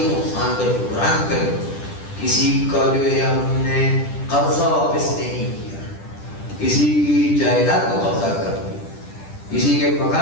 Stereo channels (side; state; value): right; late; 10 ms